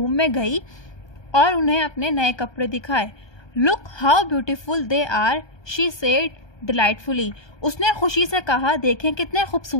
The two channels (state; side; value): late; right; 1.2 ms